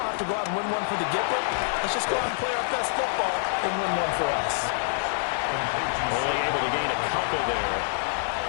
have to go out and win one for the Gipper. Let's just go out and play our best football and win one for us. Only able to gain a couple there,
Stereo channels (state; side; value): silent; right; 61 dB below the other